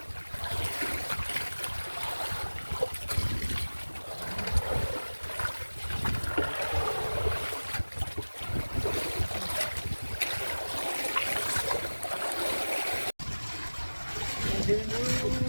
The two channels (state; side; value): inverted; both; correlation -1.00